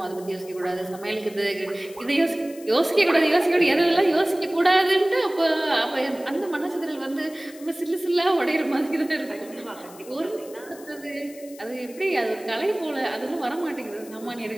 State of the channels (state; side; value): noise; left; hiss, 20 dB below the sound